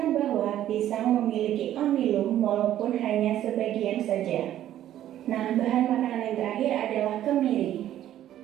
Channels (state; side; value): quieter; left; 12.1 dB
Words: bahwa pisang memiliki amilum walaupun hanya sebagian saja. Nah, bahan makanan yang terakhir adalah kemiri.